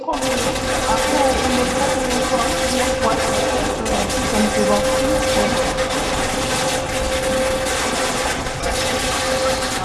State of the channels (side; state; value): both; identical; correlation 1.00